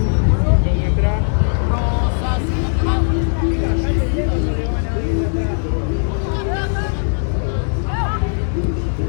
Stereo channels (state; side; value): silent; right; digital silence